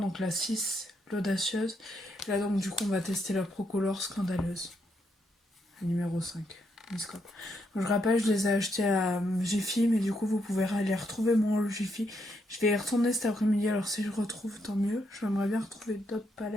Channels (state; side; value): normal; both; correlation 0.78